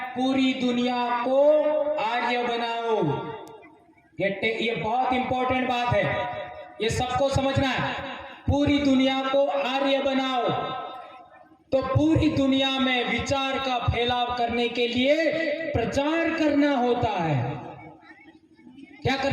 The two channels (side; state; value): both; identical; correlation 1.00